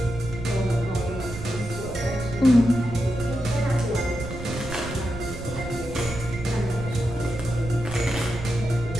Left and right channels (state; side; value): noise; right; rumble, 9 dB below the sound